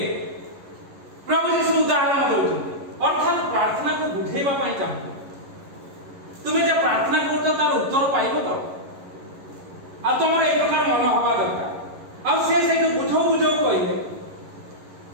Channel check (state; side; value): late; left; 11 ms